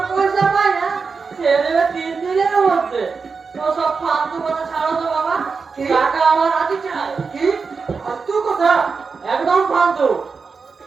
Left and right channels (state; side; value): quieter; left; 5.0 dB